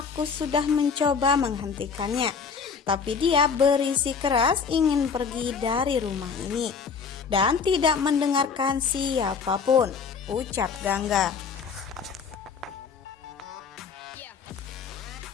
sudah mencoba menghentikannya, tapi dia berisi keras ingin pergi dari rumah ini dan tidak mendengarkan siapapun," ucap Gangga.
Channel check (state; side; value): quieter; right; 5.8 dB